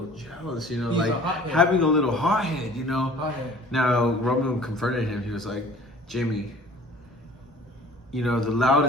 jealous, you know, He's like a hothead. having a little hothead, you know. Hothead. Now Roman confronted him. He was like, Jimmy, you know, the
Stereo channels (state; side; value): normal; both; correlation 0.48